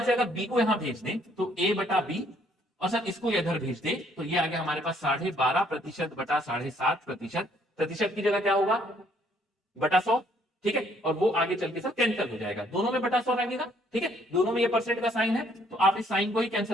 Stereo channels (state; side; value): normal; both; correlation 0.65